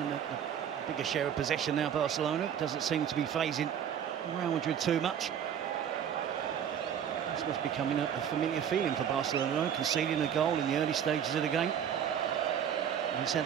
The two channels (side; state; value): left; quieter; 8.8 dB